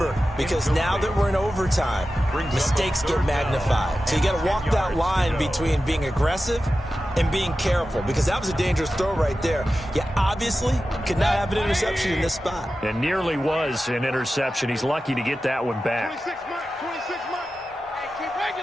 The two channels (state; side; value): normal; both; correlation 0.93